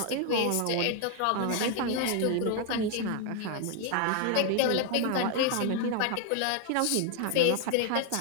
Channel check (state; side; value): different; both; correlation 0.00